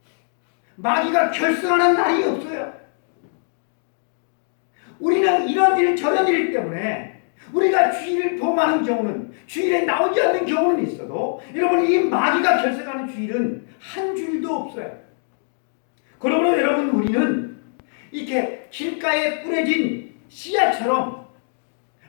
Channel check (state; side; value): silent; right; digital silence